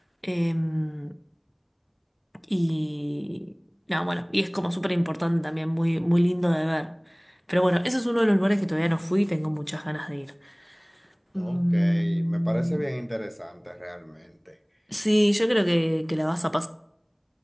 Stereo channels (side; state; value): both; identical; correlation 1.00